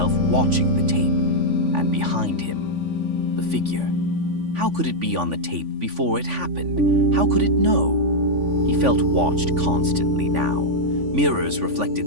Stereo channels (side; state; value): left; late; 3.5 ms